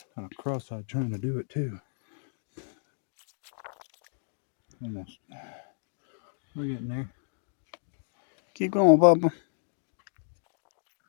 Kind of cross-eyed trying to do it too. Almost. We're getting there. Keep going, Bubba.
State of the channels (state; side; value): silent; right; digital silence